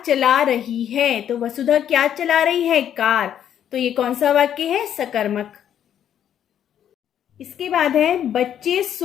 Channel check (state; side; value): quieter; right; 9.8 dB